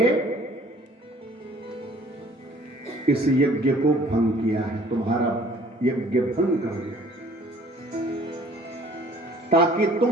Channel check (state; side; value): normal; both; correlation 0.54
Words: इस यज्ञ को भंग किया है, तुम्हारा यज्ञ भंग कर दिया, ताकि